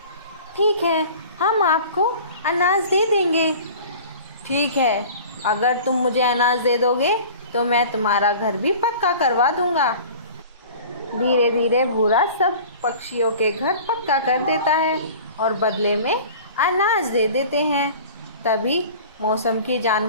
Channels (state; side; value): inverted; both; correlation -0.42